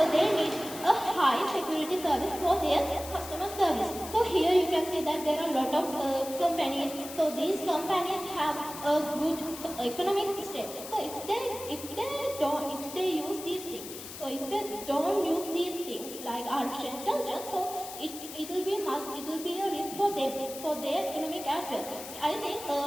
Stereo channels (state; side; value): noise; left; hiss, 11 dB below the sound